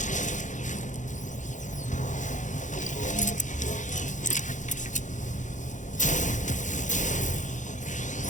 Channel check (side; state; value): right; late; 0.36 ms